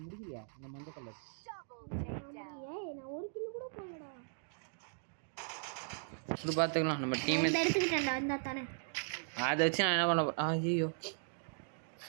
முடிக்கலையா இந்த மஞ்சள் கலர்? நான் ஒரு கிலோ கூட போடலடா. இப்படி பார்த்துக்கலாம் நம்ம டீம் எடுத்துக்கிட்டேன்டா இந்த தானே. அதை வச்சு நான் என்ன பண்ண போறேன்? ஐயோ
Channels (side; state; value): left; silent; digital silence